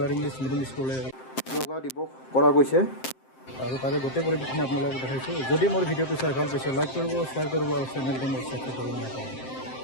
ইংলিছ মিডিয়াম স্কুলে য়োগা দিৱস কৰা গৈছে, আৰু তাৰে গোটেই পৰিৱেশখিনি আপোনালোকক দেখাইছোঁ। যদি মোৰ ভিডিঅ'টো চাই ভাল পাইছে, লাইক কৰিব, শ্বেয়াৰ কৰিব আৰু চেনেলটো মোৰ ছাবস্ক্ৰাইব কৰিব নাপাহৰিব।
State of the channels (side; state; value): right; late; 7.6 ms